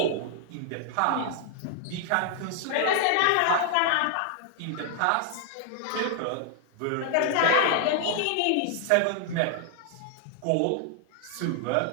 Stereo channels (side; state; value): both; different; correlation 0.00